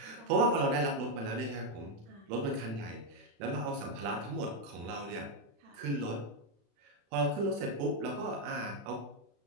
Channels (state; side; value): late; left; 35 ms